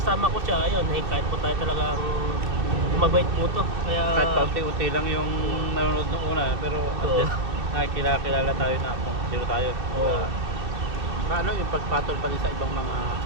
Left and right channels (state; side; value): late; left; 2.7 ms